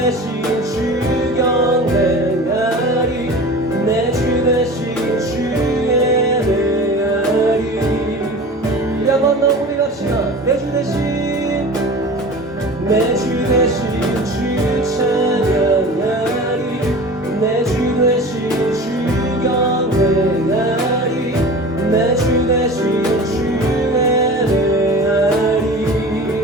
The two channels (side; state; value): both; normal; correlation 0.37